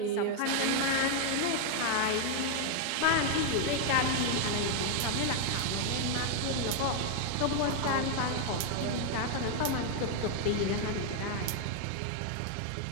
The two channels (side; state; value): both; different; correlation 0.00